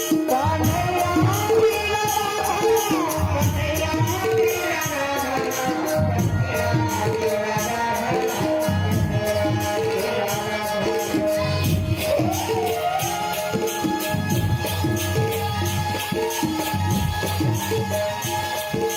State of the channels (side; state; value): both; identical; correlation 1.00